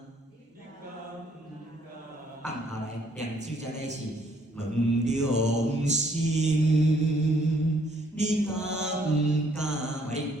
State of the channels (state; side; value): normal; both; correlation 0.66